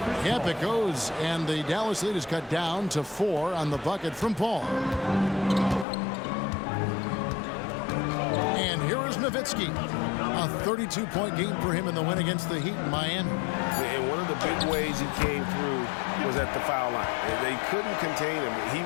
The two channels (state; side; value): drops out; right; at 5.9 s